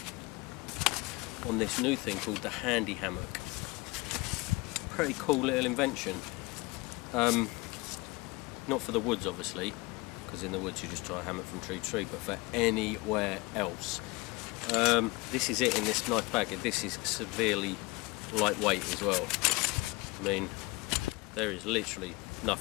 on this new thing called the Handy Hammock. Pretty cool little invention. Not for the woods obviously, because in the woods you just tie a hammock from tree to tree, but for anywhere else. This is it in this nice bag. This is severely lightweight as well. I mean, there is literally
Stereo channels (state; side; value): quieter; right; 24.0 dB